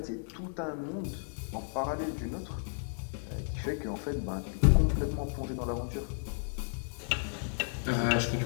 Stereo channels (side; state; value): right; silent; digital silence